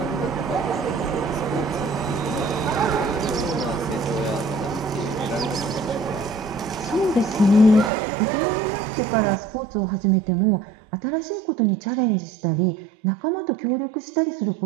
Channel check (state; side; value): drops out; left; at 7.9 s